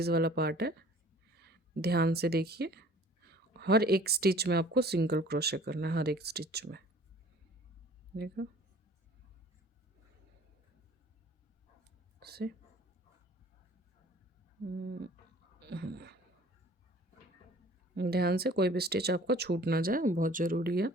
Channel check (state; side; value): normal; both; correlation 0.51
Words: वाला पार्ट है, ध्यान से देखिए, हर एक स्टिच में आपको सिंगल क्रोशे करना है, हर एक स्टिच में, देखो से। ध्यान से, कोई भी स्टिच आपका छूट ना जाए, बहुत ज़रूरी है,